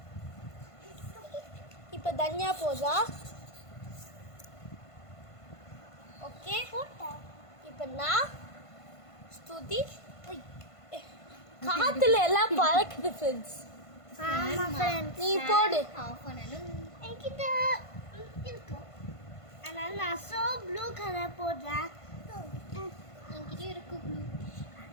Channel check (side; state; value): right; late; 1.5 ms